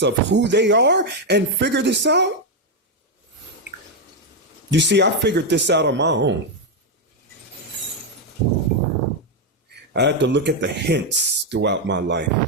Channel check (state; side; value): normal; both; correlation 0.03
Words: of who they are and figure this out. You see, I figured this out on my own. I had to look at the hints throughout my